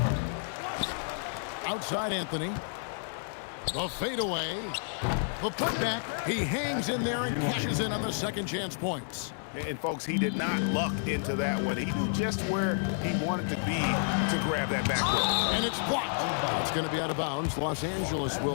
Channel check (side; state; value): right; silent; digital silence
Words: Outside Anthony. The fadeaway. The putback. He hangs in there and cashes in on the second chance points. And folks, he did not luck into that one. He knew just where he wanted to be to grab that backcourt. And it's blocked. It's going to be out of bounds. Los Angeles